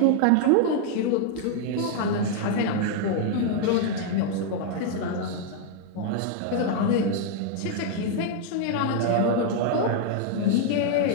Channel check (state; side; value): different; both; correlation 0.00